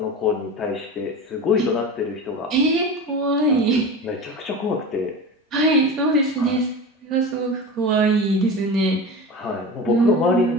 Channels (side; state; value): both; normal; correlation 0.30